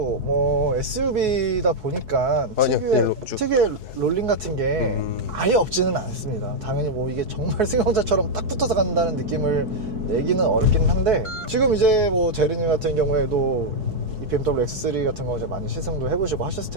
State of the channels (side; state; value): left; late; 4.6 ms